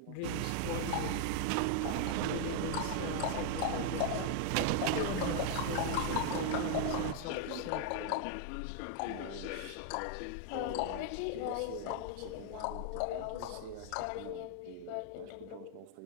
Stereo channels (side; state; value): both; different; correlation 0.00